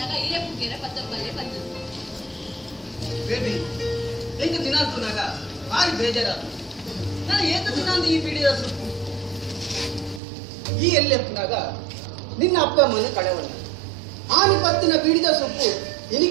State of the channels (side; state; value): left; drops out; at 10.2 s